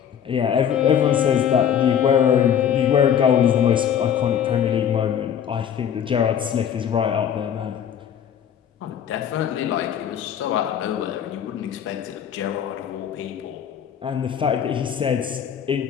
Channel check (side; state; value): right; quieter; 8.8 dB